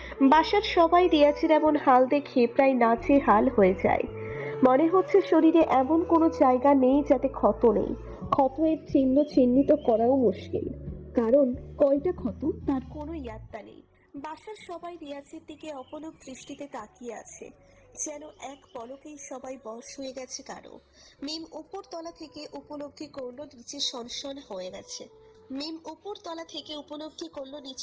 বাসার সবাই রিয়াজের এমন হাল দেখে প্রায় নাজেহাল হয়ে যায়। মনে হচ্ছে শরীরে এমন কোনো জায়গা নেই যাতে ক্ষত নেই। ক্ষত এর চিহ্ন চিহ্নিত করাও মুশকিল, কারণ কয়টা ক্ষত তার কোনো ইয়াত্তা নেই। বাসার সবাই রিয়াজের দিকে অপলক দৃষ্টিতে তাকিয়ে আছে, যেন এক পলকেই সবাই বশ হয়ে গেছে কারো। মিম উপর তলা থেকে উপলব্ধি করলো নিচে সনসন হয়ে গেছে।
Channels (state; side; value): identical; both; correlation 1.00